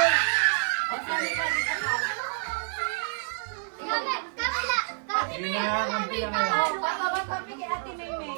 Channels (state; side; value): silent; left; digital silence